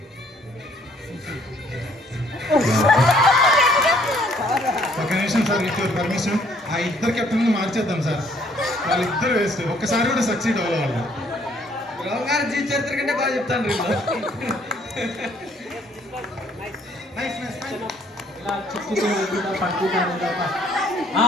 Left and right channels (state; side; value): normal; both; correlation 0.63